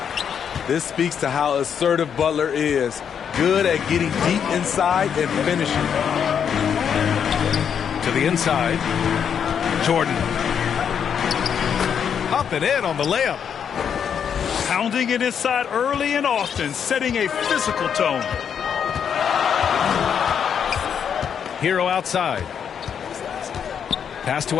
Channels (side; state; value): right; quieter; 7.8 dB